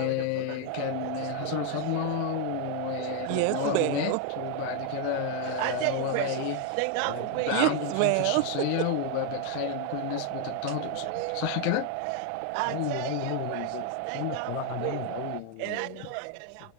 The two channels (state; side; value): different; both; correlation 0.01